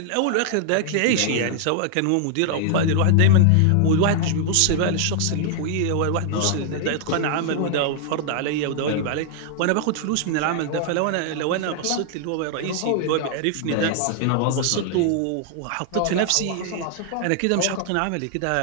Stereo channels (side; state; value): both; different; correlation 0.00